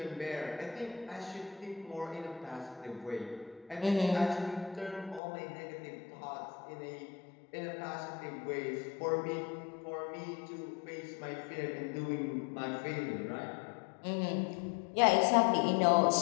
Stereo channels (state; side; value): drops out; right; at 5.2 s